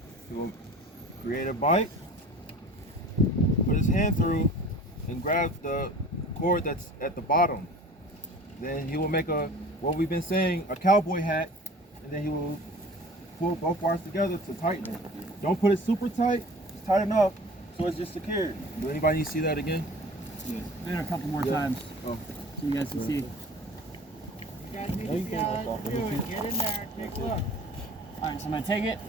He will create a bite, put his hand through, and grab the cord that's at the bottom. Then he will make what we've been saying, a cowboy hat, and then he will pull both wires together to tighten it. Don't put it super tight, just tight enough so it's just secure. Do anybody need to see that again? Yes. Maybe a couple more times so you guys can see. You guys need to see how it's doing. Get in there and take a look. Alright, so I'm going to take it,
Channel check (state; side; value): normal; both; correlation 0.43